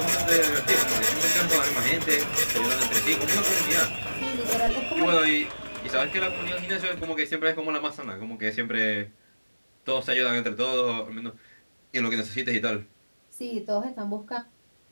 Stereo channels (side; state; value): both; inverted; correlation -1.00